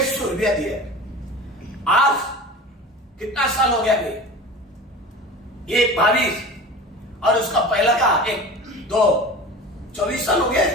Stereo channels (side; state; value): both; normal; correlation 0.35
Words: रुपया दिया। आज कितना साल हो गया? ये 22 और उसका पहला का 1 2 24 साल हो गए,